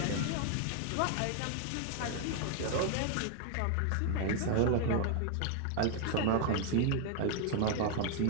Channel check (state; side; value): different; both; correlation 0.00